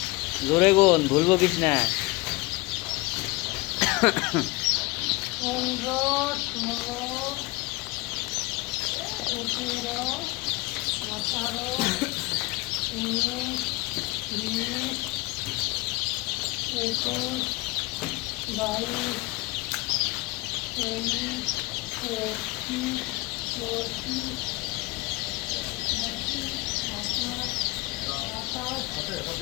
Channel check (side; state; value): right; quieter; 22.8 dB